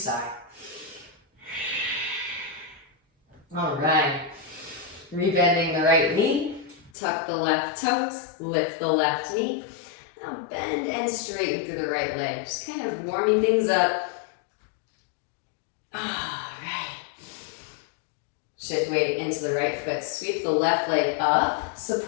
All right. Rebending the right knee. Tuck the left toes. Lift the left knee. Now bend and straighten through the right leg. Just kind of warming things up. All right. Shift weight into the right foot. Sweep the left leg up.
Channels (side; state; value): right; drops out; at 6.9 s